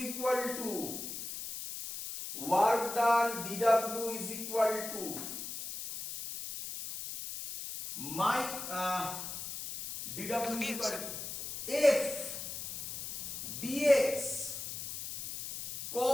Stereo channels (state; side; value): noise; left; hiss, 7 dB below the sound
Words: equal to my dw is equal to f dx